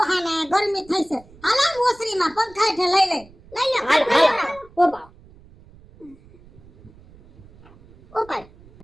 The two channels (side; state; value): right; noise; rumble, 25 dB below the sound